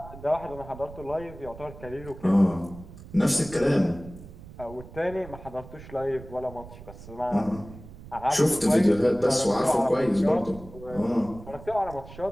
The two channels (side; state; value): right; noise; rumble, 16 dB below the sound